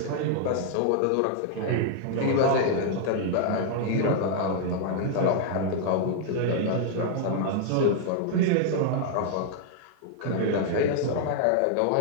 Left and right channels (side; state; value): both; different; correlation 0.00